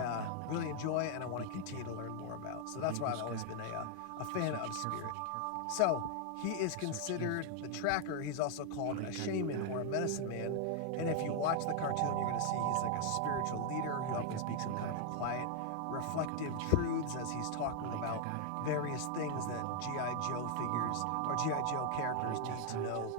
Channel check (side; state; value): both; different; correlation 0.00